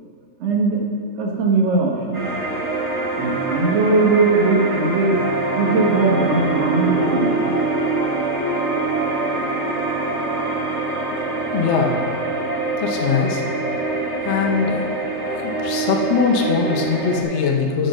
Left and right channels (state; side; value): late; left; 3.3 ms